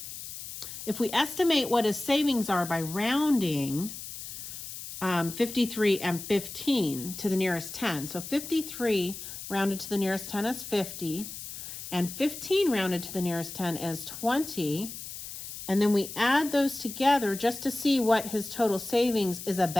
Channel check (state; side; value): noise; left; hiss, 10 dB below the sound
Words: if we estimate what his savings are by rounding 53 and 15 to the nearest 10. So 53 rounded to the nearest 10 is 50, and 15 rounded to the nearest 10 is 20. And then we add those together just to see what his total savings is